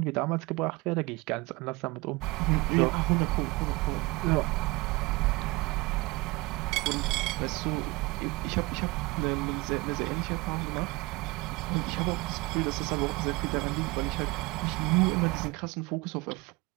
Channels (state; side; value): quieter; left; 23.7 dB